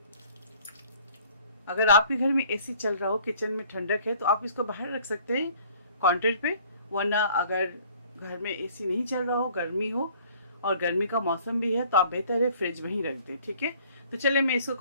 अगर आपके घर में एसी चल रहा हो, किचन में ठंडक है, तो आप इसको बाहर रख सकते हैं काउंटर पे, वरना अगर घर में एसी नहीं चल रहा हो, गर्मी हो और गर्मी का मौसम भी है, तो आप बेहतर है फ्रिज में ही रख दें, ठीक है। तो चलिए मैं इसको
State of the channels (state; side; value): inverted; both; correlation -0.56